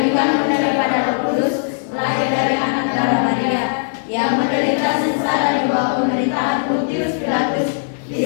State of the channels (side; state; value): right; silent; digital silence